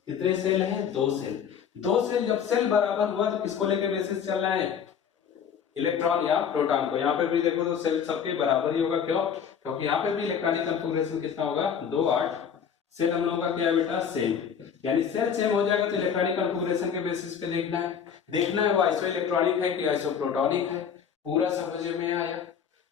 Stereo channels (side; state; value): right; quieter; 7.6 dB